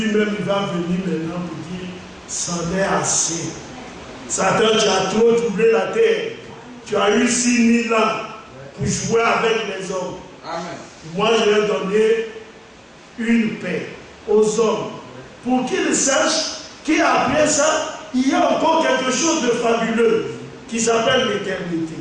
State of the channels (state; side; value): identical; both; correlation 1.00